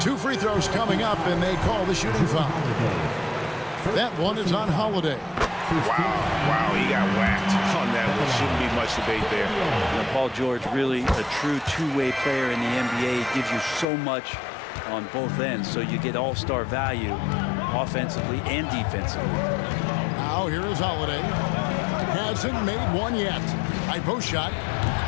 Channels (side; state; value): right; drops out; at 13.9 s